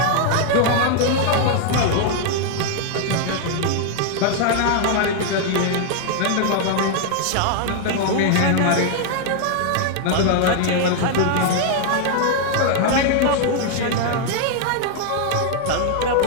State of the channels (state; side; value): different; both; correlation 0.00